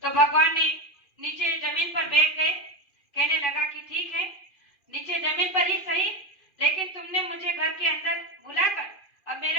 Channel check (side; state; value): right; late; 2.4 ms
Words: तो भगवान ने नीचे जमीन पर बैठ गए। कहने लगा कि ठीक है, नीचे जमीन पर ही सही, लेकिन तुमने मुझे घर के अंदर बुलाकर अब